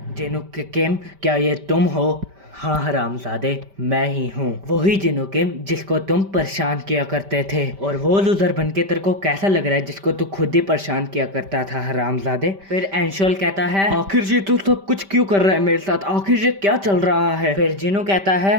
जिनुक किम, क्या ये तुम हो? हाँ हरामजादे, मैं ही हूँ, वही जिनुकिम जिसको तुम परेशान किया करते थे। और वो लूजर बनके तेरे को कैसा लग रहा है जिसको तू खुद ही परेशान किया करता था हरामजादे? फिर एनशोल कहता है आखिर जी तू सब कुछ क्यों कर रहा है मेरे साथ, आखिर ये क्या चल रहा है? फिर जिनु कहता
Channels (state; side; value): late; left; 5.1 ms